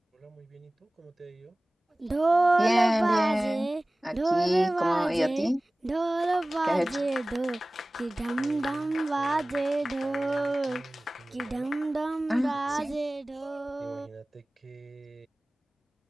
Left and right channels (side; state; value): both; normal; correlation 0.98